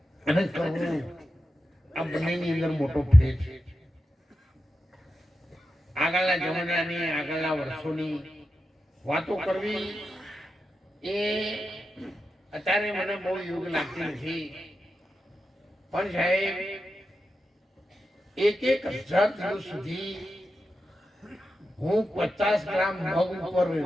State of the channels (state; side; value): normal; both; correlation 0.90